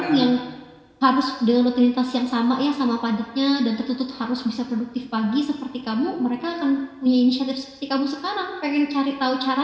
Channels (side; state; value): both; identical; correlation 1.00